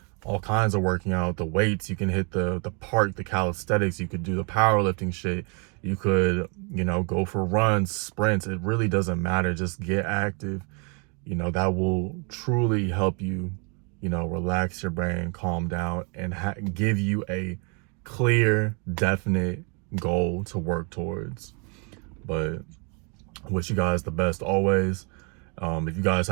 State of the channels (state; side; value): quieter; left; 35.0 dB